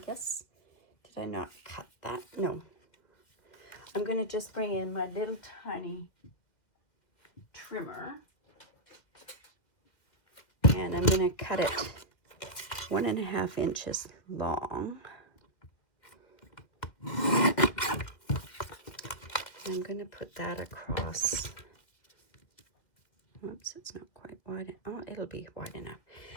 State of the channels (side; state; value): right; late; 2.3 ms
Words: did I not cut that? No. I'm going to just bring in my little tiny trimmer, and I'm going to cut it 1.5 inches long. I'm going to put that across. Oops, it's not quite wide. Oh, it'll be wide enough.